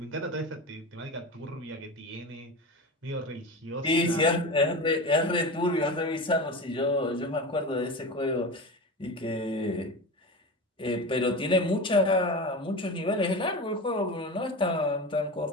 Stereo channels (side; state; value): both; normal; correlation 0.27